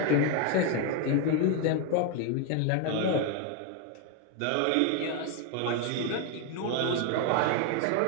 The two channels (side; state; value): both; different; correlation 0.01